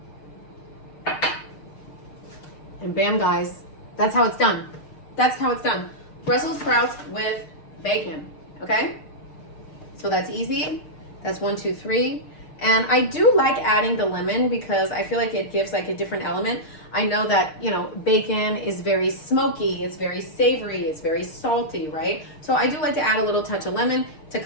And bam, guys, that's how it's done. That's how it's done. Brussels sprouts with bacon, okay? So that's easy. That's 1, 2, 3. And I do like adding the lemon because I feel like it gives like a different element. I know that, you know, bacon is very smoky, it's very savory, it's very salty, right? So I do like to add a little touch of lemon to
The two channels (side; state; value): right; late; 6.6 ms